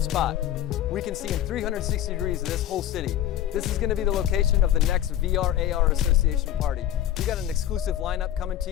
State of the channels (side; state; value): right; quieter; 11.9 dB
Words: we can see in 360 degrees of this whole city. This is going to be the location of the next VRARA Association party. We got an exclusive lineup coming to